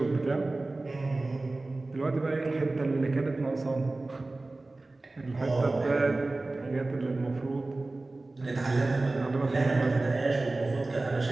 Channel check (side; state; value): left; quieter; 3.1 dB